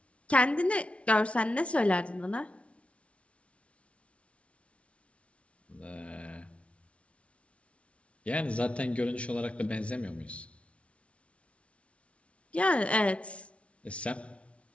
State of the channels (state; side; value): late; right; 0.062 ms